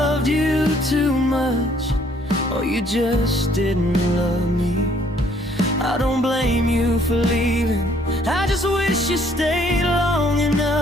you too much, or you just didn't love me. I don't blame you for leaving, I just wish you stayed long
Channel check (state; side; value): normal; both; correlation 0.63